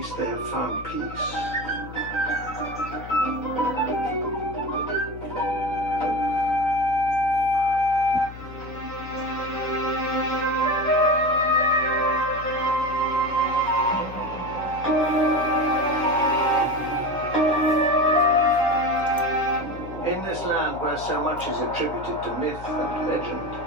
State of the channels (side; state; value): left; noise; hum, 14 dB below the sound